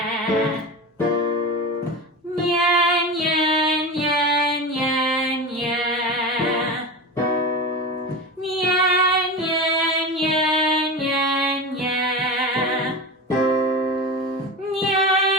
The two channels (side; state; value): both; normal; correlation 0.26